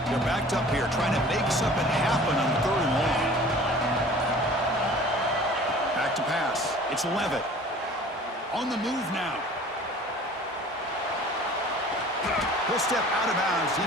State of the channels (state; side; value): normal; both; correlation 0.46